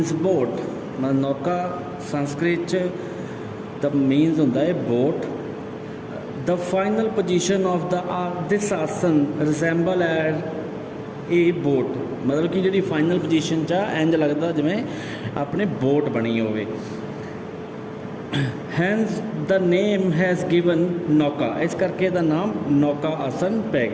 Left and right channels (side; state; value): both; identical; correlation 1.00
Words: बोट, मतलब नौका संस्कृत च द मीनस होंदा है boat. The final position of this आसन resemble as a boat, मतलब कि जी फाइनल पोजीशन चा इंज लगता जिमें अपने बोट बनी होवे। Hence the name has given नौका, इस करके दा नाम नौका आसन पै